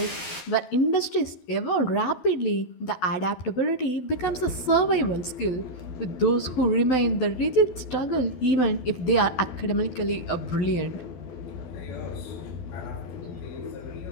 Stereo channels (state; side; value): late; right; 12 ms